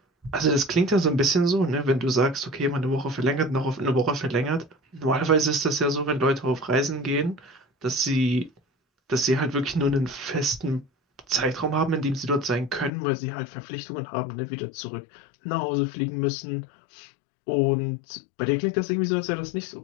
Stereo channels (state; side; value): drops out; right; at 12.9 s